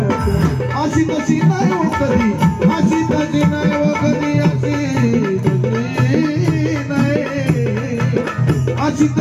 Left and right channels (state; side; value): identical; both; correlation 1.00